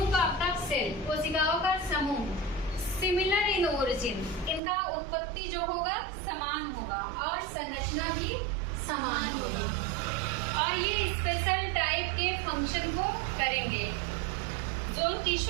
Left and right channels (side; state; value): left; drops out; at 4.6 s